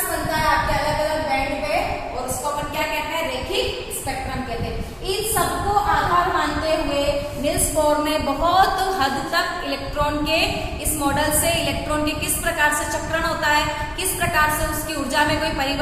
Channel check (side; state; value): both; identical; correlation 1.00